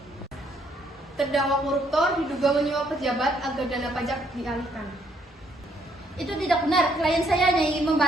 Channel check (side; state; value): both; normal; correlation 0.70